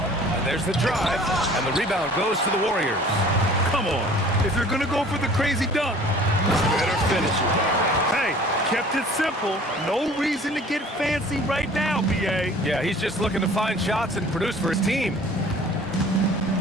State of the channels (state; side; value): normal; both; correlation 0.49